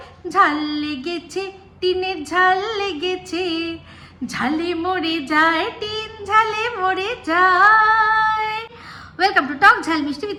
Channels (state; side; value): identical; both; correlation 1.00